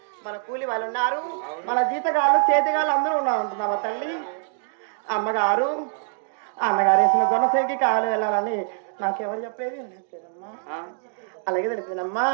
మన కూలి వాళ్ళు ఉన్నారు, మన జీతగాళ్ళు చేతిగాళ్ళు అందరూ ఉన్నారు అంటున్నావా తల్లి? అమ్మగారు అన్నగారేసిన జనసేనకి కావాలి వెళ్ళాలని నాకెవరు చెప్పేది తెలియదమ్మా. ఆ, అలాగే తెలిసిందమ్మా.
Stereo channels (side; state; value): left; silent; digital silence